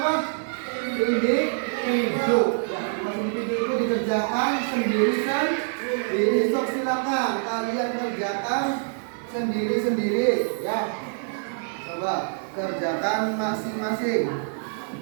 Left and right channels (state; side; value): silent; left; digital silence